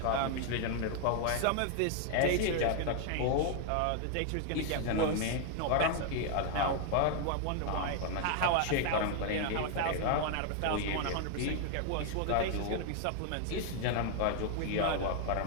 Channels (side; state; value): both; different; correlation 0.00